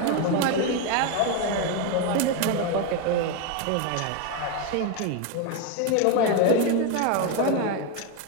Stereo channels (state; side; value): different; both; correlation 0.02